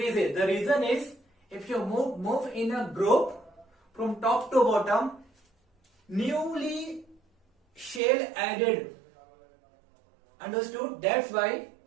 The reason is, if you move in a group from top to bottom, newly shell added. Understood? That's why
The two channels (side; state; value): left; drops out; at 8.0 s